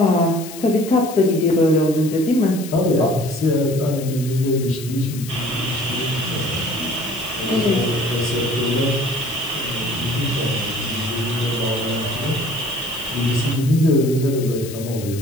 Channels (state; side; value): noise; left; hiss, 14 dB below the sound